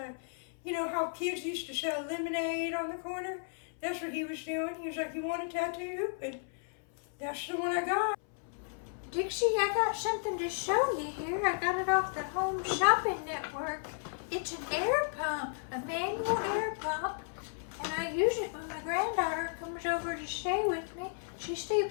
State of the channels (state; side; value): silent; right; 55 dB below the other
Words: you know how kids used to sell lemonade on the corner? That's what he was doing. He was like, you want a tattoo? And that's the one I got. Dixie, I got something to show you here. I got it off the Home Shopping Network. It's an air pump, a manual air pump, and I use it when my granddaughter comes over to stay with me. She